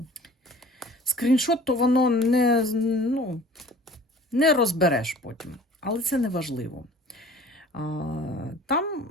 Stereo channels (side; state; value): both; normal; correlation 0.46